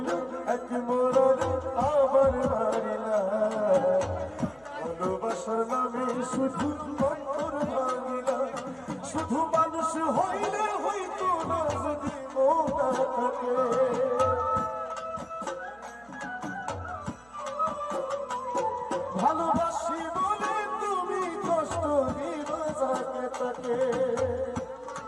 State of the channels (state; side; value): noise; right; hum, 28 dB below the sound